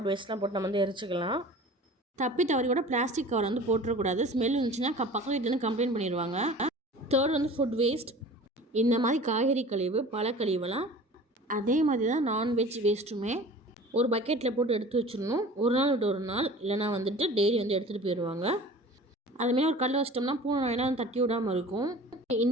வேஸ்ட்லாம் போட்டு நம்ம வந்து எரிச்சிக்கலாம். தப்பி தவறி கூட பிளாஸ்டிக் கவர் வந்து போட்டுறக்கூடாது. ஸ்மெல் இருந்துச்சுன்னா பக்கத்து வீட்டிலேருந்து கம்ப்ளைண்ட் பண்ணிடுவாங்க. தேர்ட் வந்து ஃபுட் வேஸ்ட். இந்த மாதிரி காய்கறி கழிவு பழக்கழிவுலாம் அதே மாதிரி தான் நான்வெஜ் வேஸ்ட்டுமே ஒரு பக்கெட்டில் போட்டு எடுத்து வச்சிடணும். ஒரு நாள் விட்டு ஒரு நாள், இல்லைனா வந்துட்டு டெய்லி வந்து எடுத்துகிட்டு போயிடுவாங்க. அதுமாரி ஒரு கல்லை வச்சிட்டோம்னா பூனை நாயெல்லாம் தட்டி விடாமல் இருக்கும்.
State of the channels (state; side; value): normal; both; correlation 0.42